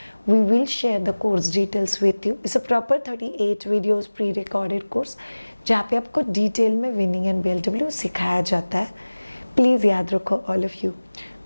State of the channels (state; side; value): inverted; both; correlation -1.00